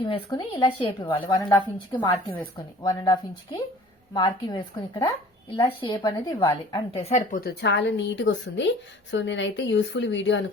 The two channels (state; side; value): normal; both; correlation 0.48